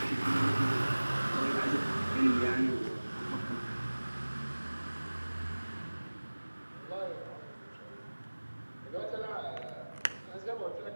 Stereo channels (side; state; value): both; inverted; correlation -1.00